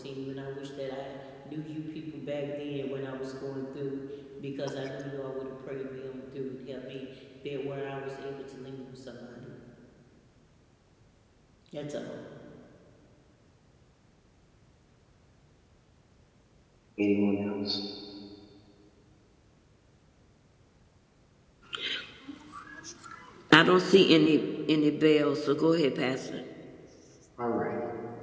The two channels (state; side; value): identical; both; correlation 1.00